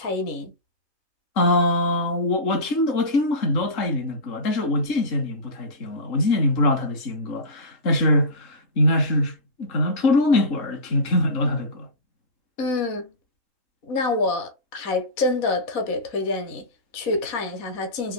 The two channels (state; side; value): late; right; 4.0 ms